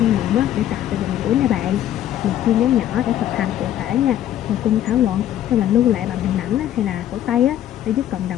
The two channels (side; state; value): right; quieter; 11.8 dB